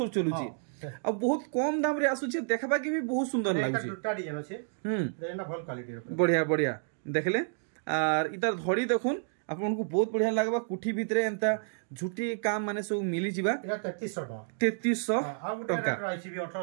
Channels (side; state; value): left; silent; digital silence